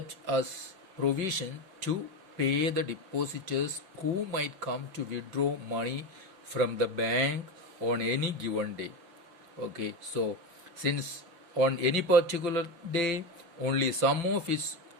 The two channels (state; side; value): late; left; 5.9 ms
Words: as provision to pay the depositors who might come to withdraw money from the bank on any given day. Okay, so since on any particular day only some of its